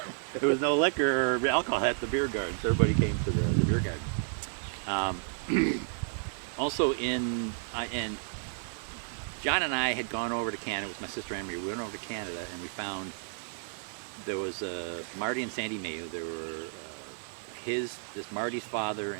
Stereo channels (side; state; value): left; silent; digital silence